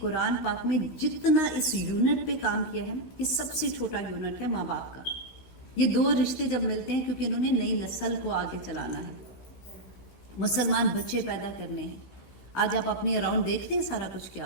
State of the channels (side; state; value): right; late; 16 ms